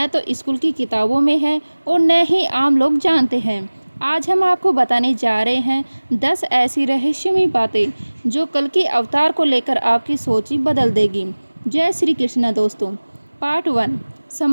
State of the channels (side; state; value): both; inverted; correlation -1.00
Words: तो स्कूल की किताबों में है और न ही आम लोग जानते हैं। आज हम आपको बताने जा रहे हैं 10 ऐसी रहस्यमयी बातें जो कल्कि अवतार को लेकर आपकी सोच ही बदल देगी। जय श्री कृष्णा दोस्तों। पार्ट 1,